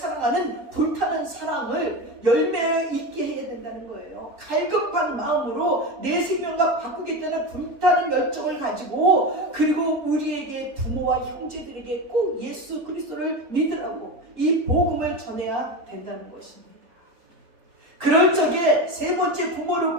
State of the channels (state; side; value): late; left; 3.8 ms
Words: 불타는 사랑을 열매 있게 해야 된다는 거예요. 갈급한 마음으로 내 생명과 바꾸겠다는 불타는 열정을 가지고 그리고 우리에게 부모와 형제들에게 꼭 예수 그리스도를 믿으라고 이 복음을 전해야 된다는 것입니다. 그럴 적에 세 번째 부모를